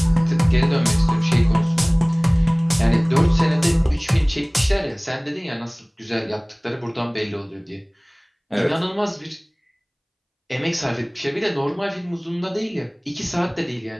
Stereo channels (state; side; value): identical; both; correlation 1.00